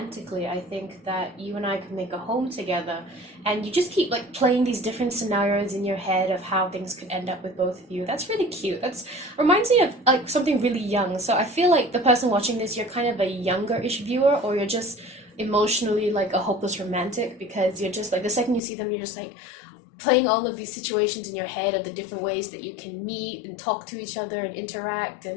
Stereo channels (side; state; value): right; drops out; at 18.6 s